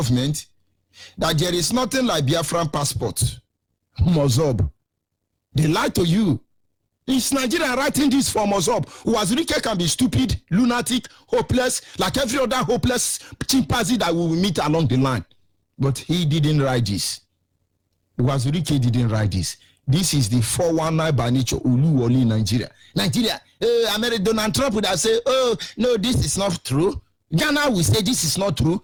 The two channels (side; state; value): both; identical; correlation 1.00